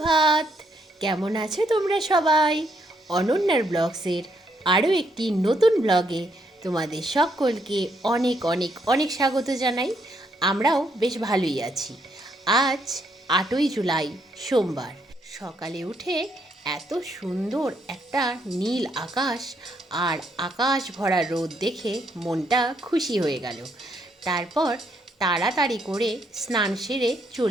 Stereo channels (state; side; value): normal; both; correlation 0.74